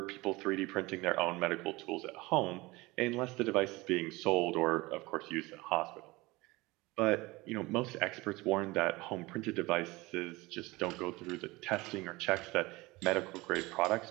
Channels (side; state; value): left; quieter; 22.0 dB